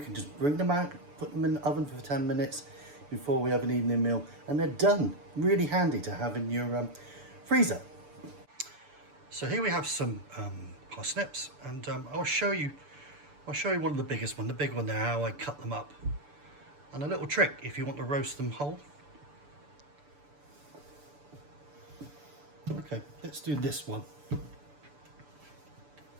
just bring them out, put them in the oven for 10 minutes before we have an evening meal, and they're done. Really handy to have in your freezer. So here we have some parsnips, and I'll show you one of the biggest one, the big one there, how I cut them up. And a little trick if you want to roast them whole. Okay, let's do this one.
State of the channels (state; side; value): late; left; 6.9 ms